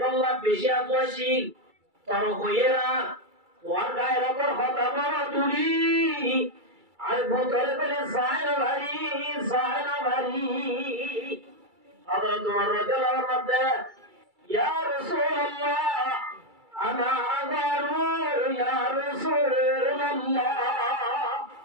বেশি আতওয়াশীল তর হইরা তোর গায়ের উপর হতা বড় তুলি আর বুদরা বলি সাইরা চায় না বাড়ি। হযরত ওমর রাদিয়াল্লাহু আনহু বলেন, ইয়া রাসূলুল্লাহ আনা আগারু ইয়া রাসূলুল্লাহ,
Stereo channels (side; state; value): left; late; 2.3 ms